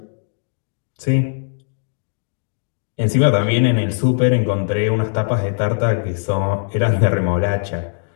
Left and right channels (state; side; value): silent; right; digital silence